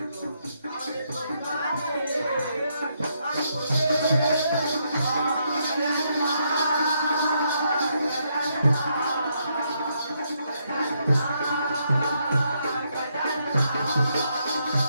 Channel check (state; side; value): inverted; both; correlation -0.77